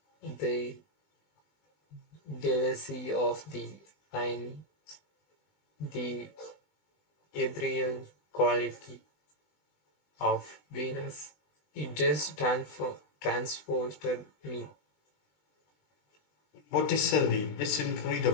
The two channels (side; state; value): right; late; 20 ms